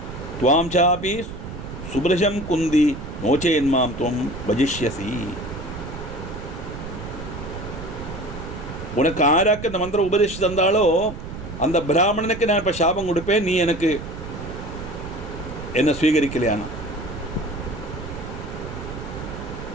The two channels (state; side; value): noise; right; rumble, 10 dB below the sound